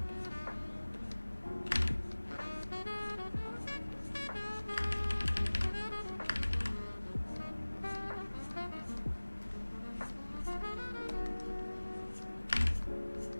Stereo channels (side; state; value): both; inverted; correlation -1.00